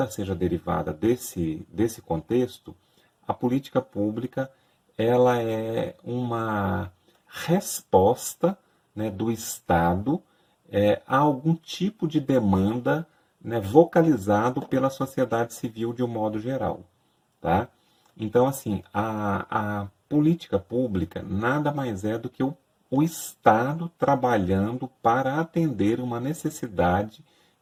seja derivada desse contexto, a política pública ela é uma resposta, né, do Estado a algum tipo de demanda, né, vocalizado pela sociedade civil de um modo geral. Tá? Então, assim, a política pública nada mais é do que o Estado trabalhando para atender uma necessidade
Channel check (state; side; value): identical; both; correlation 1.00